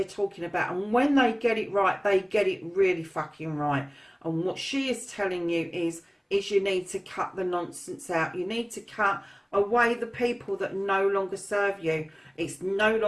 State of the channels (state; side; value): identical; both; correlation 1.00